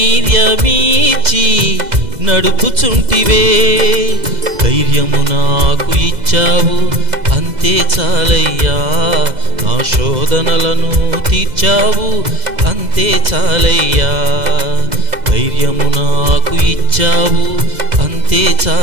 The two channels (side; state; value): left; late; 2.0 ms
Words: నడుపుచుంటివే. ధైర్యము నాకు ఇచ్చావు అంతే చాలయ్యా, నా శోధనలను తీర్చావు అంతే చాలయ్యా. ధైర్యము నాకు ఇచ్చావు అంతే